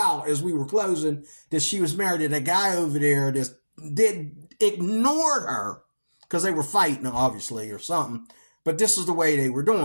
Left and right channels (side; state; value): both; inverted; correlation -1.00